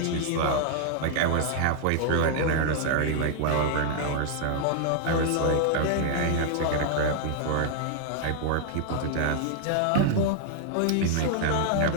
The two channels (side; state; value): both; different; correlation 0.00